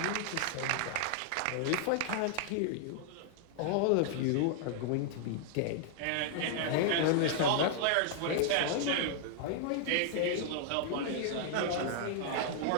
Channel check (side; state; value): both; different; correlation -0.01